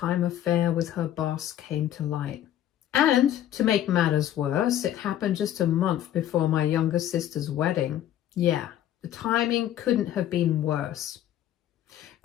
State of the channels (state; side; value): quieter; right; 11.7 dB